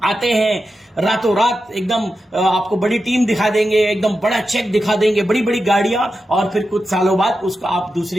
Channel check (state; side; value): normal; both; correlation 0.90